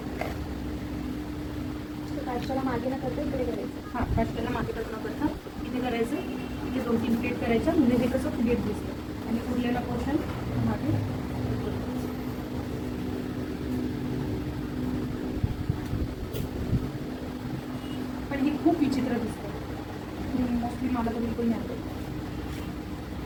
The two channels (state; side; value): identical; both; correlation 1.00